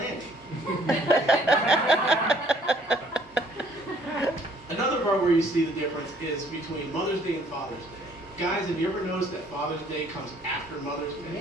Another part where you see the difference is between Mother's Day and Father's Day. Guys, have you ever noticed that Father's Day comes after Mother's Day?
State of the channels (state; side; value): normal; both; correlation 0.61